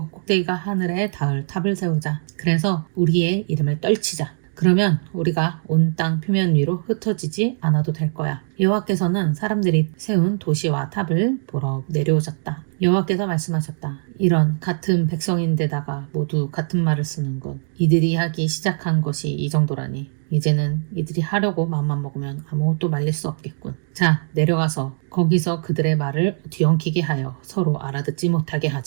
꼭대기가 하늘에 닿을 탑을 세우자. 그래서 우리의 이름을 떨치자. 그러면 우리가 온 땅 표면 위로 흩어지지 않아도 될 거야. 여호와께서는 사람들이 세운 도시와 탑을 보러 내려오셨다. 여호와께서 말씀하셨다. 이런 같은 백성인데다가 모두 같은 말을 쓰는군. 이들이 하기 시작한 것이 이 정도라니. 이제는 이들이 하려고 마음만 먹으면 아무것도 말릴 수 없겠군. 자, 내려가서 거기서 그들의 말을 뒤엉키게 하여 서로 알아듣지 못하게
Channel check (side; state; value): left; silent; digital silence